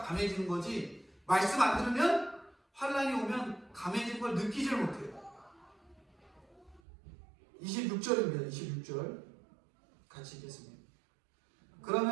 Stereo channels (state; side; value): drops out; left; at 6.8 s